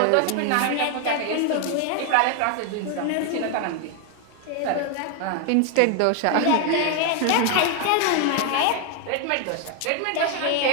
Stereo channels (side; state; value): both; different; correlation 0.01